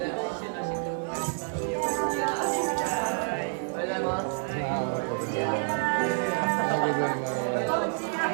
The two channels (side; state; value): left; silent; 57 dB below the other